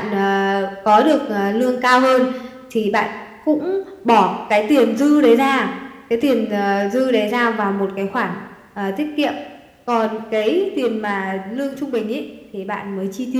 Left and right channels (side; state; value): both; identical; correlation 1.00